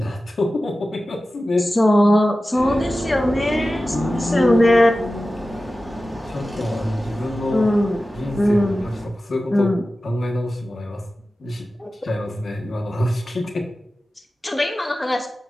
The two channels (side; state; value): both; normal; correlation 0.95